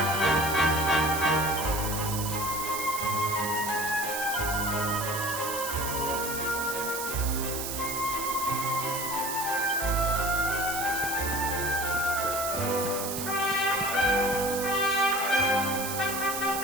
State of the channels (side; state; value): right; noise; hiss, 5 dB below the sound